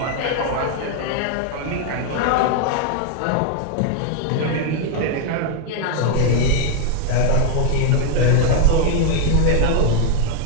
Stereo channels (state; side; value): different; both; correlation 0.00